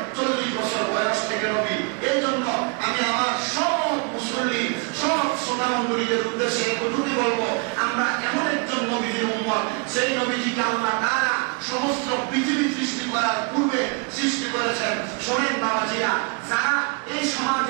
40 বছর বয়স থেকে নবী। এই জন্য আমি আমার সব মুসল্লি, সব শ্রোতা মণ্ডলীদের উদ্দেশ্যে এতটুকু বলবো, আমরা এমন একজন নবীদের উম্মত, সেই নবীজিকে আল্লাহ তাআলা সমস্ত পৃথিবী সৃষ্টি করার পূর্বে সৃষ্টি করেছেন। শোনেন বাবাজিরা, যারা এই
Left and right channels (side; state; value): left; quieter; 33.1 dB